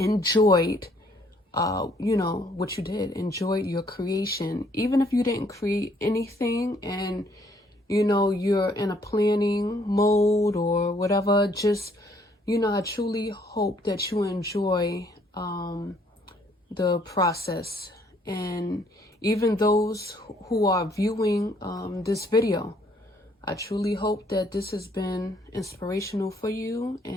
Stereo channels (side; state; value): both; normal; correlation 0.65